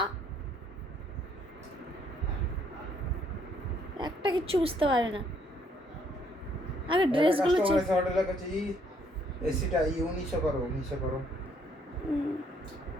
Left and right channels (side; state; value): both; normal; correlation 0.67